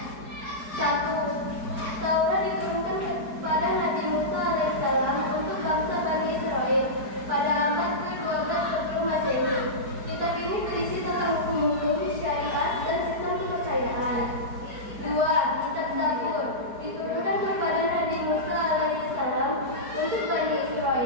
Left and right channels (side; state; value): left; late; 4.7 ms